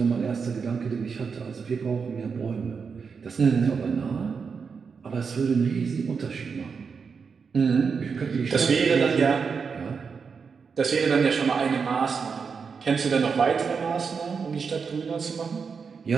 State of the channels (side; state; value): left; quieter; 5.7 dB